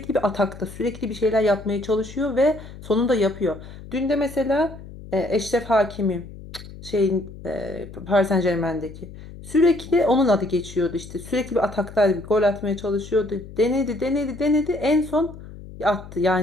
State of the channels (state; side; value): noise; left; hum, 15 dB below the sound